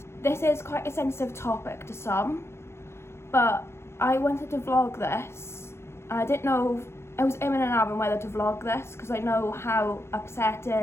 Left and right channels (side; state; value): right; late; 0.12 ms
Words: This is quite a sensitive topic to some, but I wanted to vlog this. I didn't know, I was in and out on whether to vlog this because I know how